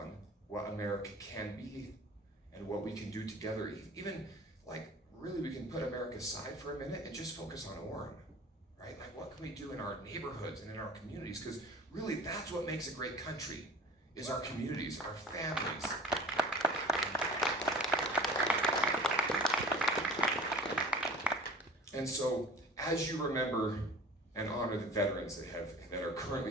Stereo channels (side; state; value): both; normal; correlation 0.43